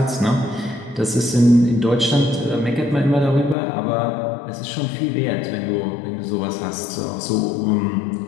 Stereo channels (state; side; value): drops out; right; at 3.6 s